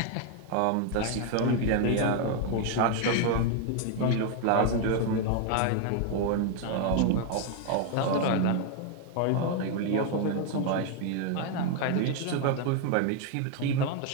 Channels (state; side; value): different; both; correlation 0.01